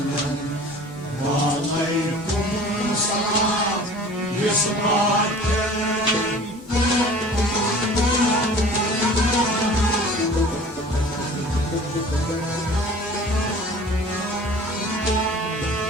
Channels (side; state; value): both; normal; correlation 0.44